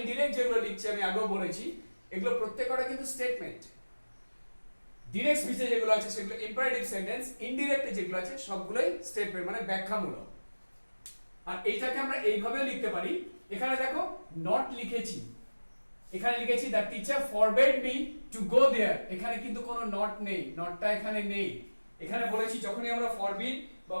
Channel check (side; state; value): both; inverted; correlation -1.00